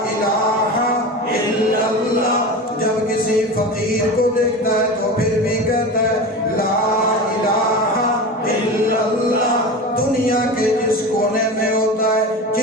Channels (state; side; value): normal; both; correlation 0.29